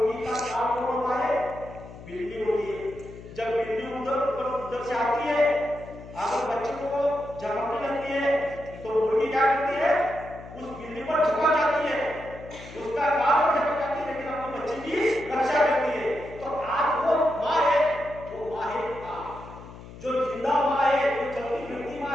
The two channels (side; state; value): left; noise; hum, 16 dB below the sound